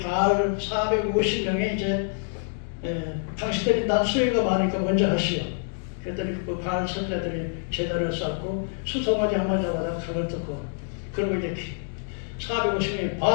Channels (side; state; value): right; silent; digital silence